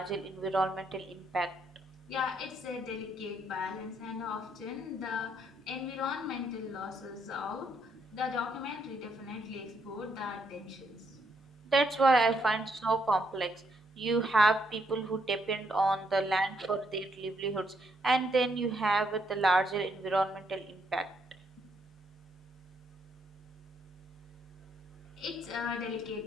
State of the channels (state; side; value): normal; both; correlation 0.75